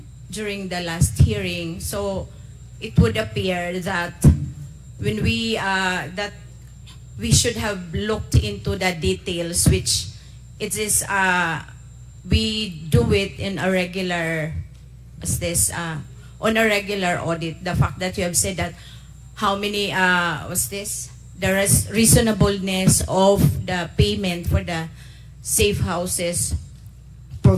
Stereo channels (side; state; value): both; identical; correlation 1.00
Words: during the last hearing, so it would appear that when we should have looked into the details, which it is we do it in a regular on a regular audit. The fact that you have said that how many there is reasonableness of the payment for the safe houses